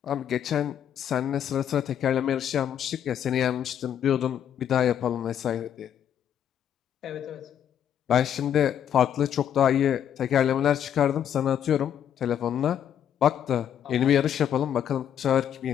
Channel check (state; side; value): quieter; right; 9.5 dB